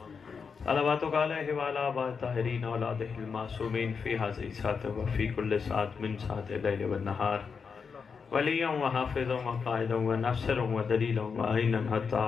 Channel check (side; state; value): right; quieter; 5.7 dB